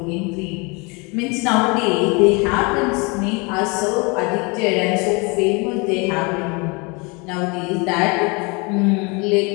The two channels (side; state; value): right; quieter; 29.1 dB